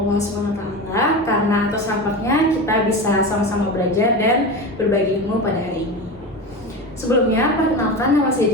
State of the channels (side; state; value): both; normal; correlation 0.25